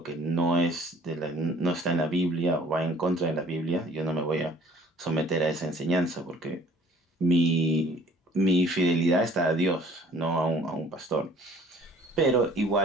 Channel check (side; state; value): both; normal; correlation 0.53